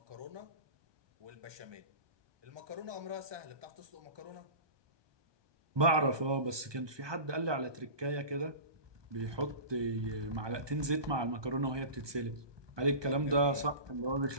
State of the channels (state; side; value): late; left; 1.2 ms